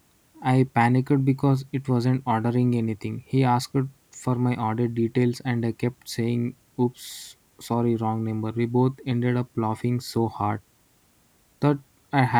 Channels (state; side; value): identical; both; correlation 1.00